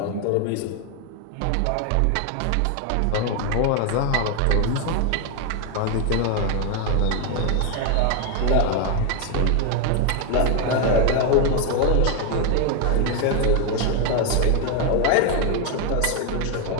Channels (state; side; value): different; both; correlation 0.01